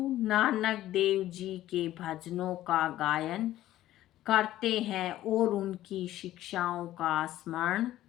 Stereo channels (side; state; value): right; quieter; 14.1 dB